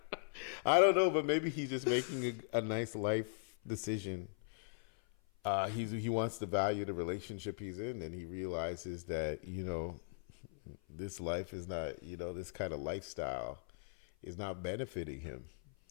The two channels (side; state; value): right; silent; 52 dB below the other